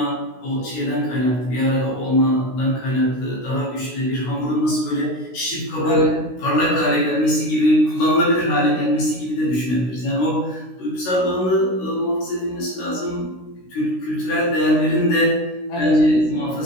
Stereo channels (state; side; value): late; right; 16 ms